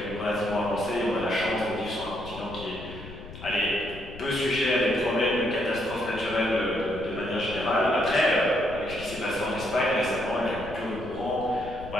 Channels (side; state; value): left; noise; rumble, 14 dB below the sound